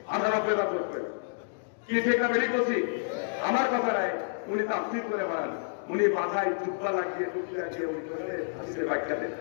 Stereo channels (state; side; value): silent; right; digital silence